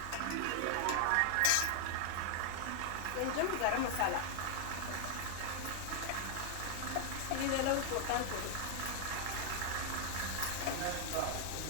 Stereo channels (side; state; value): both; different; correlation -0.01